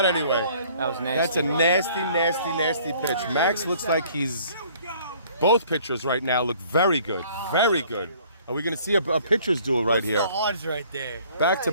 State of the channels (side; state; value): both; inverted; correlation -0.56